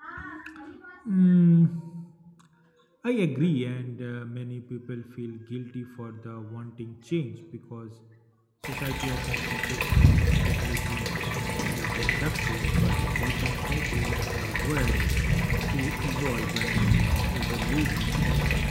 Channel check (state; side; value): identical; both; correlation 1.00